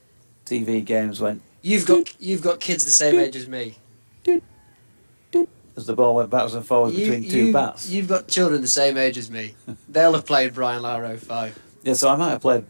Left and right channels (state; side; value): inverted; both; correlation -1.00